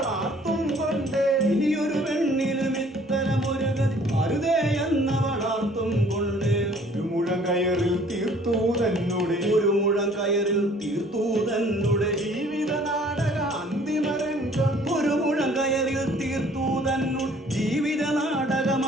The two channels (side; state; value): both; normal; correlation 0.56